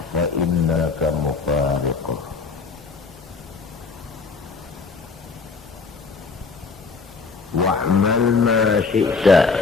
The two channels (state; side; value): quieter; right; 4.6 dB